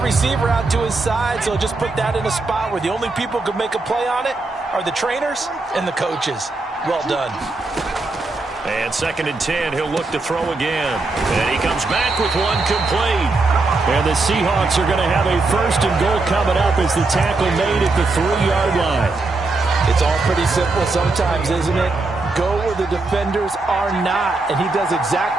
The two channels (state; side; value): quieter; left; 3.4 dB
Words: receiver out to his side, so just put that in a spot where the only people who could make a play on it are the trainers and the coaches. Well done. And 2nd and 10, he'll look to throw again. And he comes back with one complete. And the Seahawks are going to have a 1st and goal coming up as the tackle made at the 3-yard line. It's all pretty simple sometimes, isn't it? Go where the defenders are not, and he does